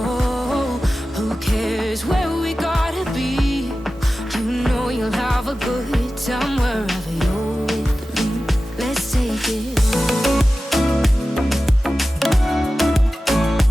Who cares where we gotta be? You know you'll have a good time wherever you're with me. Let's take it slow.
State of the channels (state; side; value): normal; both; correlation 0.95